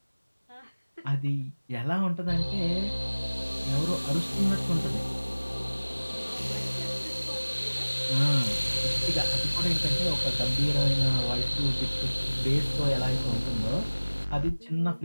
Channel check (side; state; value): both; inverted; correlation -1.00